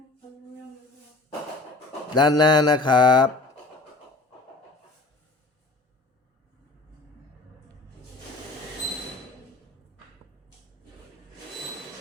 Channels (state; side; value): quieter; right; 3.2 dB